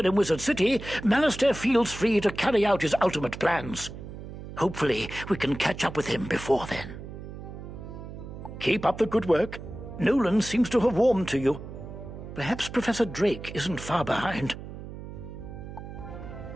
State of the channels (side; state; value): right; noise; hum, 11 dB below the sound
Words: Wizard City, Malastare feels free to carry out his ultimate plans. Hopefully, we can catch up with him before then. Keep up the good work. Nolan seems to have warmed to you. Perhaps Professor Drake isn't far behind.